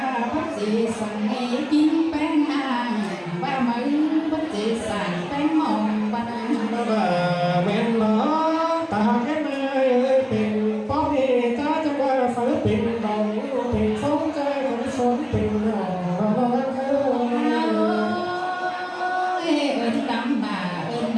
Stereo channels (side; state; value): both; identical; correlation 1.00